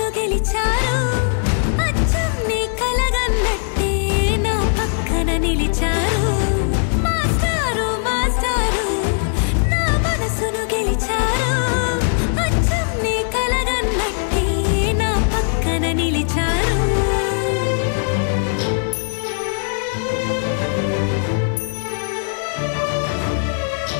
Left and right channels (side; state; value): right; silent; digital silence